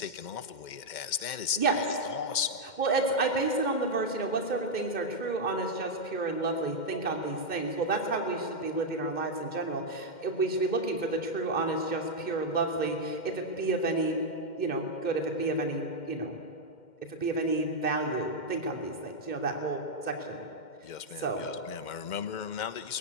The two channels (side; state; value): right; late; 2.1 ms